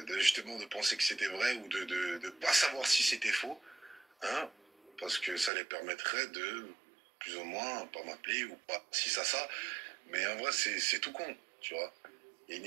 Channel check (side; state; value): left; drops out; at 5.5 s